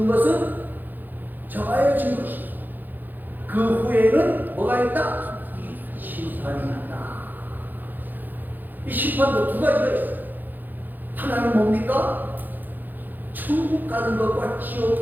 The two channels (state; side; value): late; left; 0.087 ms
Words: 것은 정하여진 것이고 그 후에는 뭐가 있다? 심판이 있다. 이 심판도 두 가지가 있어요. 하나는 뭡니까? 천국 가는 것과